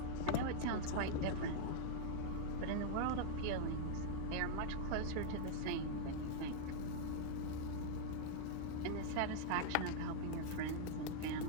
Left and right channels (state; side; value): different; both; correlation -0.01